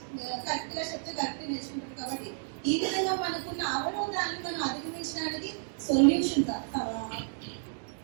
కరెక్ట్ గా చెప్తే కరెక్ట్ నేర్చుకుంటారు. కాబట్టి ఈ విధంగా మనకున్న అవరోధాన్ని మనం అధిగమించడానికి సొల్యూషన్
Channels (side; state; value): left; silent; digital silence